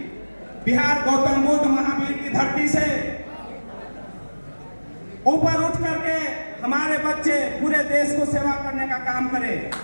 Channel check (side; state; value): both; inverted; correlation -1.00